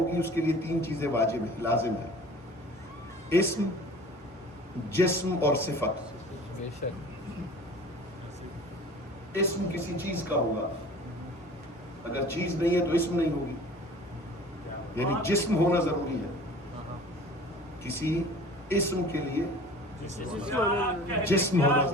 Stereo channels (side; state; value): both; normal; correlation 0.44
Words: اس کے لیے 3 چیزیں واجب ہیں, لازم ہے. اسم, جسم اور صفت. اسم کسی چیز کا ہوگا, اگر چیز نہیں ہے تو اسم نہیں ہوگی. یعنی جسم ہونا ضروری ہے. کسی اسم کے لیے جسم ہونا